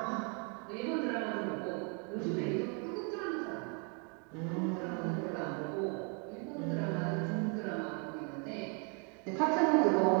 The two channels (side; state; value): left; quieter; 37.4 dB